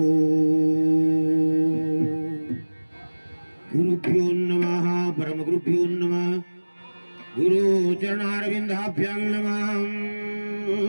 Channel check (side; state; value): both; inverted; correlation -1.00